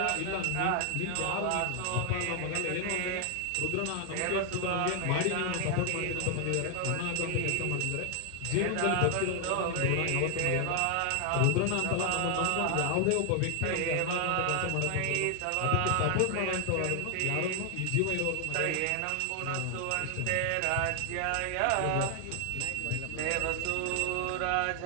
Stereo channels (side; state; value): both; different; correlation 0.00